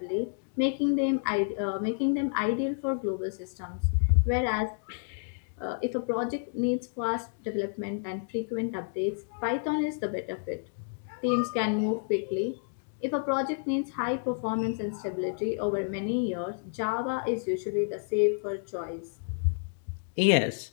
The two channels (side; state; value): right; silent; digital silence